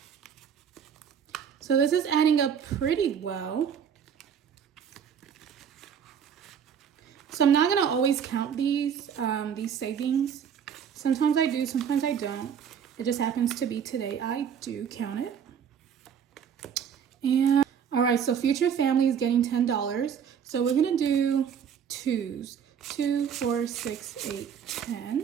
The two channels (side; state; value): left; quieter; 7.8 dB